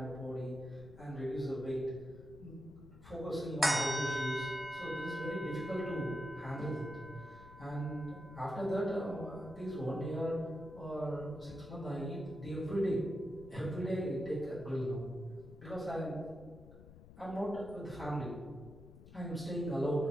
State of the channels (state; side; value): noise; left; rumble, 18 dB below the sound